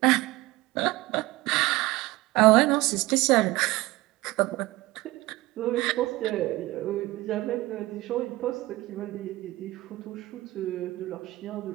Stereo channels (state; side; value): quieter; left; 19.1 dB